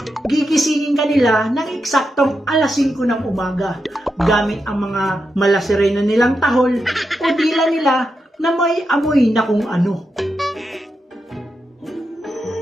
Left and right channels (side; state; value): both; normal; correlation 0.86